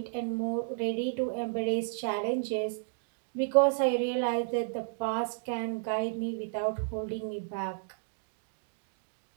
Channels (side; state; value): left; silent; digital silence